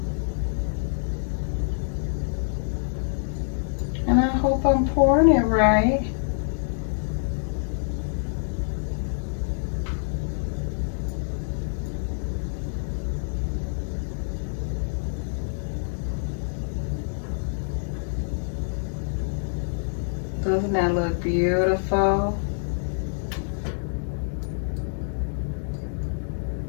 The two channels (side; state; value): right; silent; digital silence